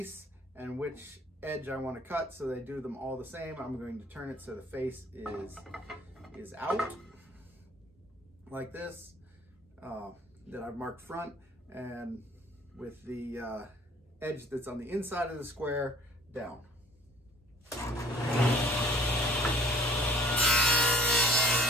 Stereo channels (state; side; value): normal; both; correlation 0.52